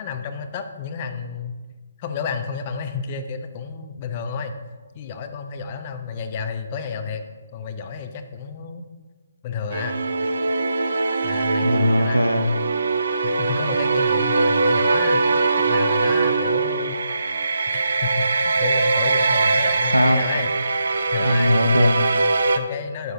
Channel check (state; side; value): inverted; both; correlation -0.82